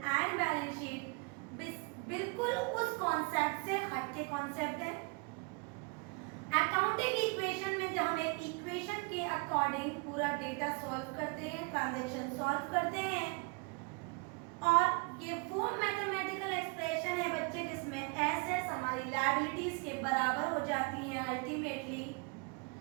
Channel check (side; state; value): left; quieter; 32.5 dB